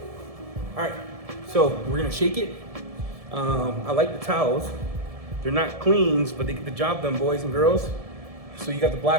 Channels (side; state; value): left; late; 1.7 ms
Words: All right, so we're gonna shake it. I like the towels. They're not cleans, but they get the job done, boys and girls. So you got the